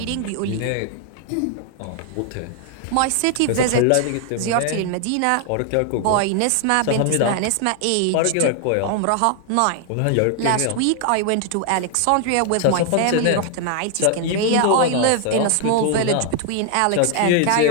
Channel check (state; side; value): different; both; correlation 0.00